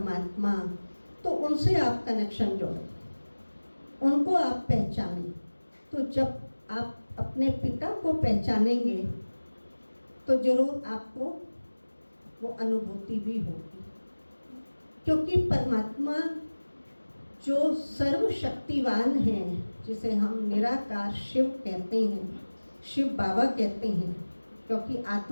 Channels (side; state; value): both; inverted; correlation -1.00